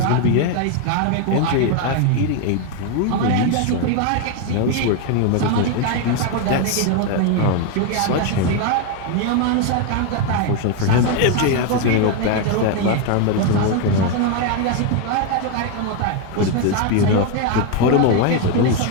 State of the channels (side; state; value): both; different; correlation 0.02